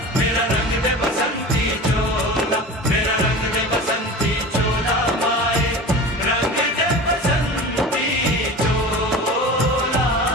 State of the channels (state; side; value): normal; both; correlation 0.34